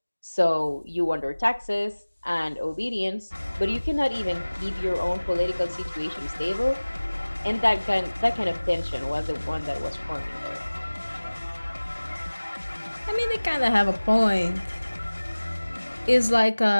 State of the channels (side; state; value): both; inverted; correlation -1.00